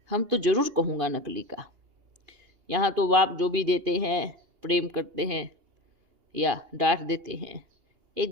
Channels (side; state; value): left; late; 2.8 ms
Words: हम तो ज़रूर कहूँगा नकली का। यहाँ तो बाप जो भी देते हैं, प्रेम करते हैं या डांट देते हैं,